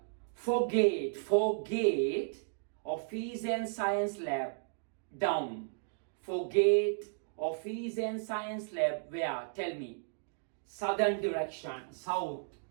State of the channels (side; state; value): left; silent; digital silence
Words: For gate, office and science lab, down. For gate, office and science lab, where? Tell me. Southern direction, south.